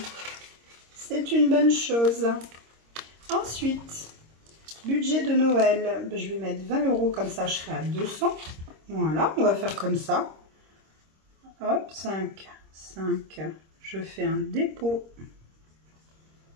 C'est une bonne chose. Ensuite, budget de Noël. Je vais mettre 20 €, comme ça je serai à 200. Voilà, on va faire comme ça. Hop, 5, 5. Je fais un dépôt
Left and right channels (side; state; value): left; late; 26 ms